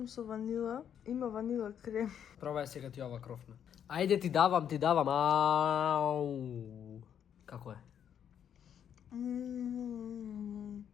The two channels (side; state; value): right; quieter; 8.9 dB